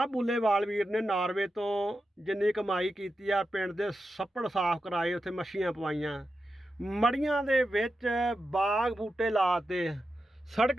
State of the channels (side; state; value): both; normal; correlation 0.90